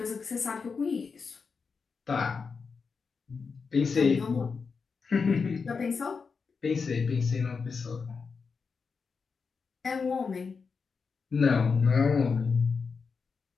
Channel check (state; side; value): quieter; right; 5.2 dB